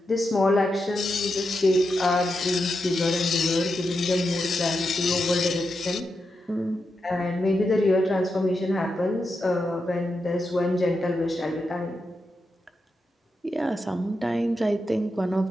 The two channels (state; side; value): normal; both; correlation 0.87